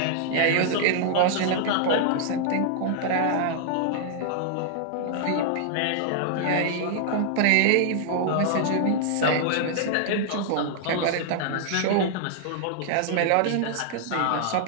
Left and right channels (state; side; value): different; both; correlation 0.00